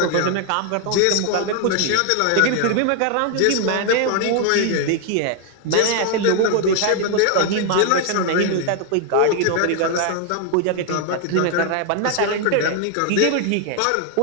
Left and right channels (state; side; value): different; both; correlation 0.00